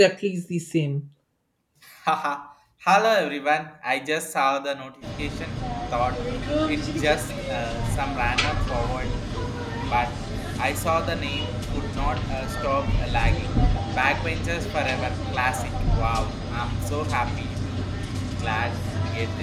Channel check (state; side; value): identical; both; correlation 1.00